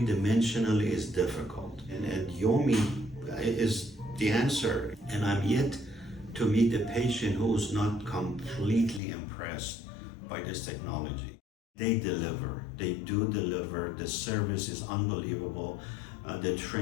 is difficult, and Yomi is the answer. And I'm yet to meet a patient who's not completely impressed by this technology. They deliver. They do deliver. The service is unbelievable. The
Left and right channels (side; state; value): right; drops out; at 9.0 s